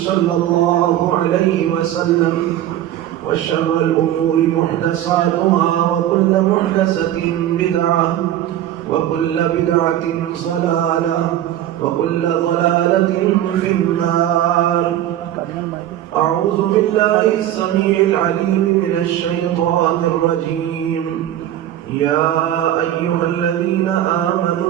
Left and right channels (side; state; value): left; quieter; 12.3 dB